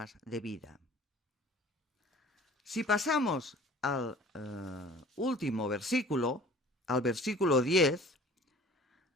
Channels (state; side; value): normal; both; correlation 0.47